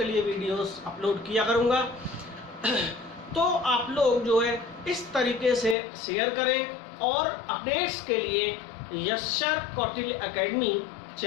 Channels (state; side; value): drops out; right; at 5.8 s